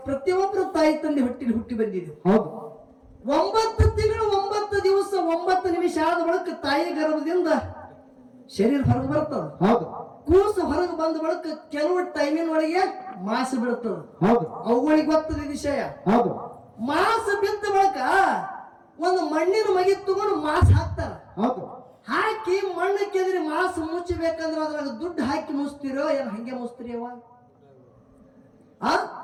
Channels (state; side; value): identical; both; correlation 1.00